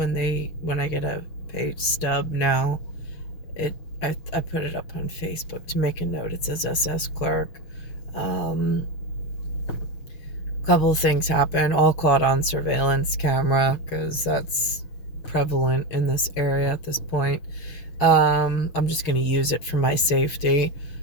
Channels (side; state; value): right; late; 6.4 ms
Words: I get a pay stub now, I put it up on Facebook to make a note. It says SS clerk. Um, Couple of things happen, all caught on surveillance camera because that's prevalent in this area at this point. I'm just going to use it for my safety,